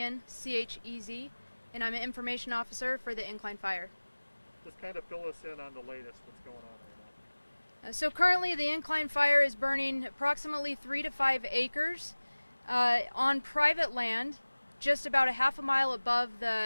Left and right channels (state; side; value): inverted; both; correlation -1.00